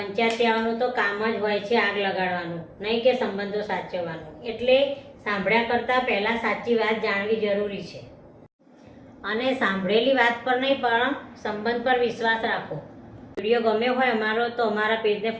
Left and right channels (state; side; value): identical; both; correlation 1.00